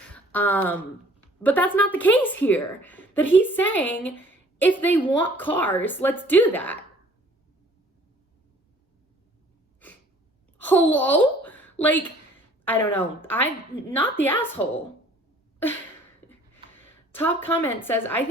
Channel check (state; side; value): normal; both; correlation 0.55